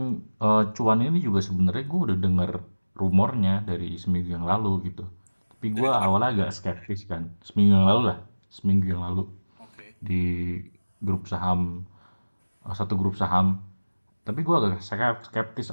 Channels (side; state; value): both; inverted; correlation -1.00